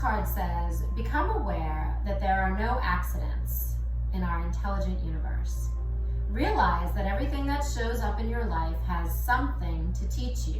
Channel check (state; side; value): identical; both; correlation 1.00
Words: says, become aware that there are no accidents in our intelligent universe. Realize that everything that shows up in your life has something to teach